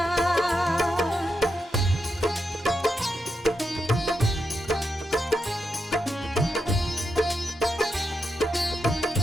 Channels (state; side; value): normal; both; correlation 0.85